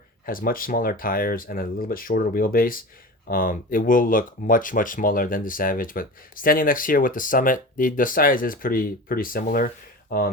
has much smaller tires and a little bit shorter wheelbase, it will look much smaller than the Savage. But standing next here with the Summit, the size is pretty similar,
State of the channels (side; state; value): both; normal; correlation 0.32